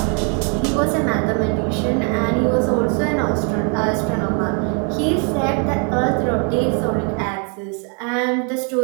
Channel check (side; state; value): left; quieter; 38.3 dB